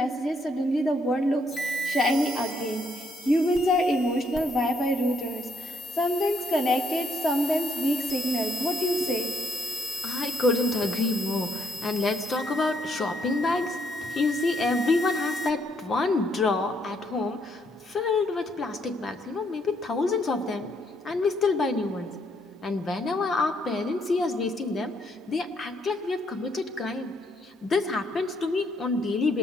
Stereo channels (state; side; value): normal; both; correlation 0.72